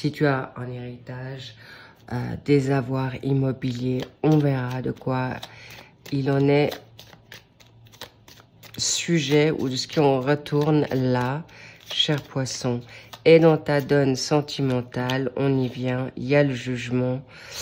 tu as un héritage, des avoirs immobiliers, on verra de quoi il en est sujet ou de ce qu'on retourne là, cher poisson. Et dans ta donne sentimentale, on y vient, il y a le jugement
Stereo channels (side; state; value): both; identical; correlation 1.00